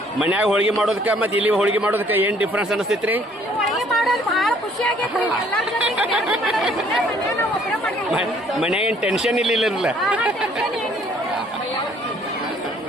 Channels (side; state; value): both; normal; correlation 0.61